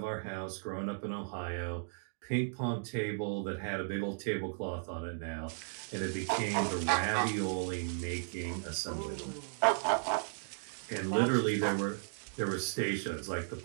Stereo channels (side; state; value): left; silent; digital silence